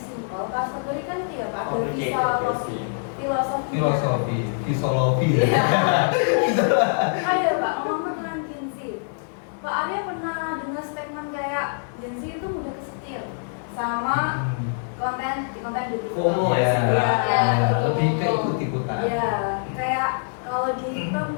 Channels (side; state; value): right; silent; 60 dB below the other